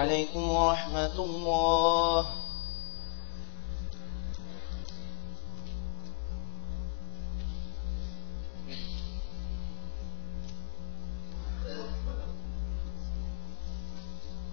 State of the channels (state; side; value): silent; right; digital silence